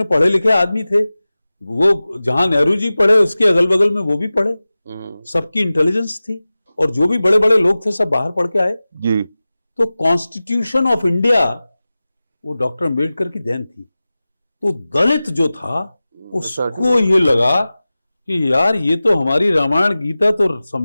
पढ़े लिखे आदमी थे, वो जहां नेहरू जी पढ़े उसके अगल बगल में वो भी पढ़े, सबकी इंटेलिजेंस थी, और जो भी बड़े बड़े लोग थे सब बाहर पढ़ के आए जी। तो कॉन्स्टिट्यूशन ऑफ इंडिया वो डॉक्टर अम्बेडकर की देन थी। तो दलित जो था उसको ये लगा कि यार ये तो हमारी रामायण गीता तो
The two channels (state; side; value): inverted; both; correlation -0.97